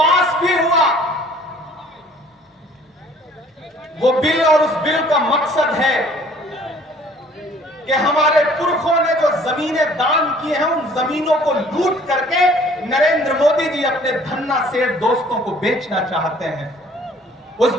भी हुआ। वो बिल और उस बिल का मकसद है कि हमारे पुरखों ने जो जमीनें दान की हैं, उन जमीनों को लूट करके नरेंद्र मोदी जी अपने धन्ना सेठ दोस्तों को बेचना चाहते हैं। उस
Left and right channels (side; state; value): both; normal; correlation 0.55